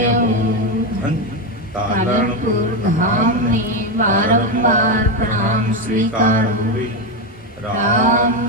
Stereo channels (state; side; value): normal; both; correlation 0.10